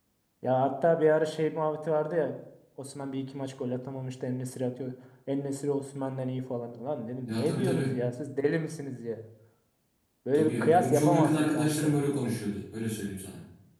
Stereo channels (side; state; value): both; identical; correlation 1.00